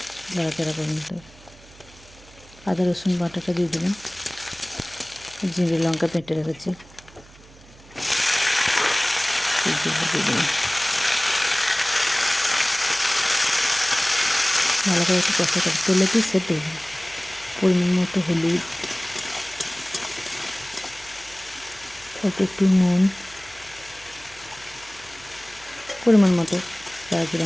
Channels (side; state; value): right; noise; hum, 23 dB below the sound